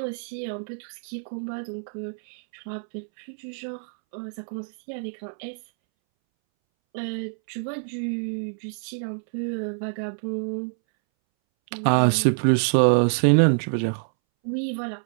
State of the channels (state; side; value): silent; left; 61 dB below the other